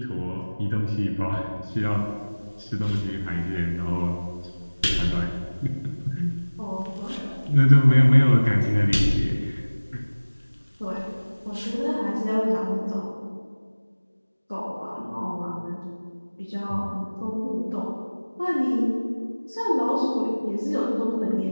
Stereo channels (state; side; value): inverted; both; correlation -1.00